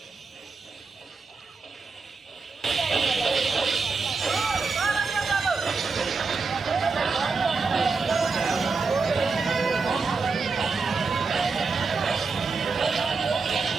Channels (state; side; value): quieter; left; 4.5 dB